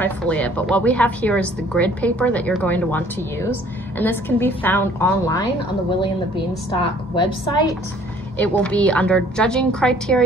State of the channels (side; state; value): both; normal; correlation 0.56